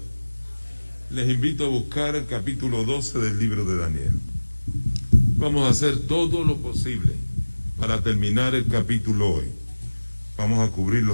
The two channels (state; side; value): inverted; both; correlation -1.00